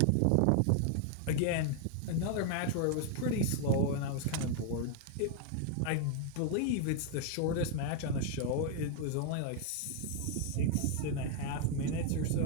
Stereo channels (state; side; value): different; both; correlation 0.00